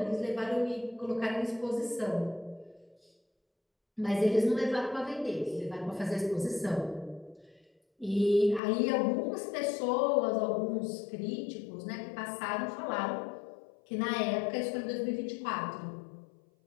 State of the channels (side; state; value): right; drops out; at 8.6 s